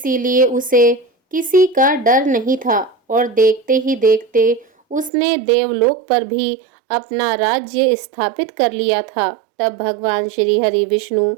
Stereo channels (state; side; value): drops out; left; at 5.1 s